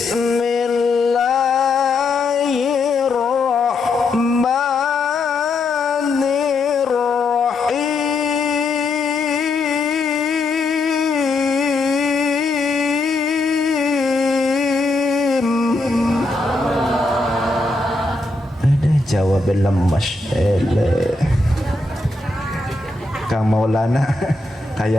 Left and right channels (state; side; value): quieter; right; 3.2 dB